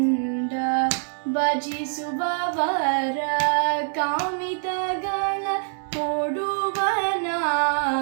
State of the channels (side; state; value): left; silent; digital silence